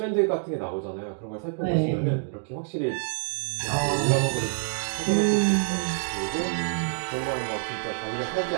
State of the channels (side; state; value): left; silent; digital silence